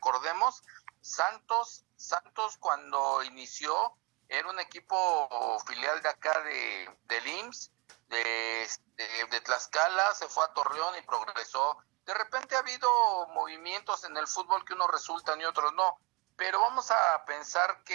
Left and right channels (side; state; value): left; quieter; 27.4 dB